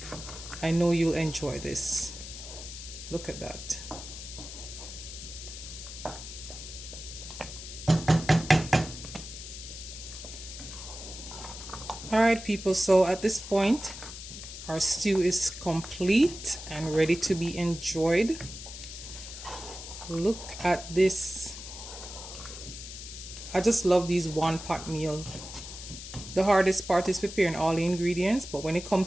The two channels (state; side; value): noise; left; hiss, 11 dB below the sound